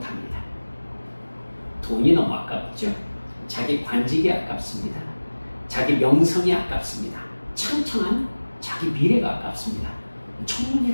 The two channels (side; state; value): both; inverted; correlation -1.00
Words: 돈이 너무 아깝죠. 자기 관직이 아깝습니다. 자기 명성이 아깝습니다. 창창한 자기 미래가 아깝습니다.